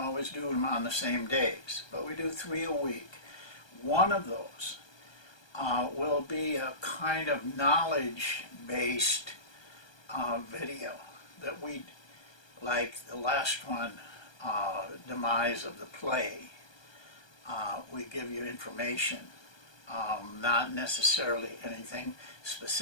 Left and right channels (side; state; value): right; late; 1.2 ms